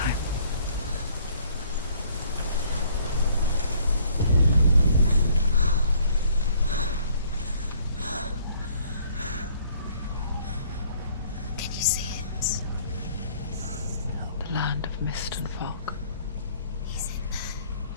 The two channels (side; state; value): both; inverted; correlation -0.60